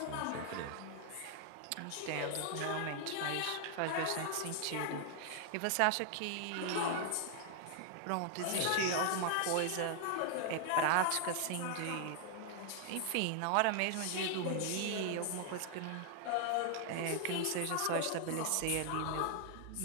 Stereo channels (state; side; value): different; both; correlation 0.00